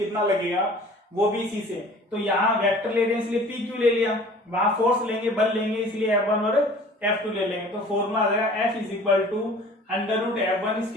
लगेगा वो भी इसी से। तो यहाँ वेक्टर ले रहे हैं इसलिए पी क्यू ले लिया, वहां फोर्स लेंगे बल लेंगे इसलिए F1 और F2 ले लेंगे। तो फॉर्मूला आ जाएगा F is equal to under root F1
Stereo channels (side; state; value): both; normal; correlation 0.47